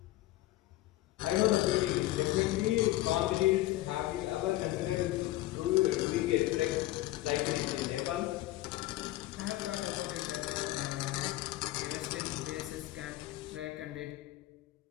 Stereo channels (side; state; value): right; quieter; 16.9 dB